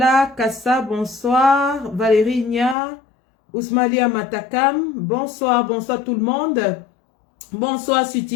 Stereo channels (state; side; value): drops out; right; at 2.8 s